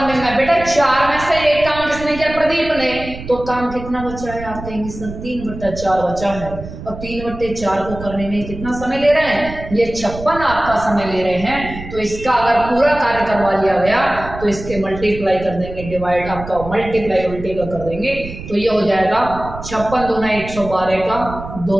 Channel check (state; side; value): noise; right; rumble, 11 dB below the sound